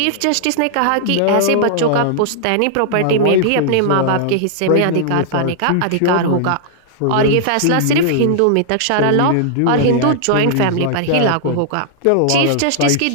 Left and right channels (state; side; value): different; both; correlation -0.01